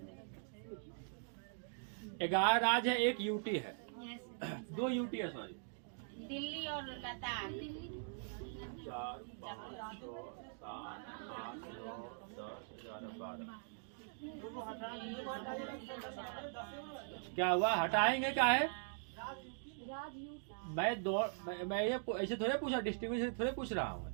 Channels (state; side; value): silent; left; digital silence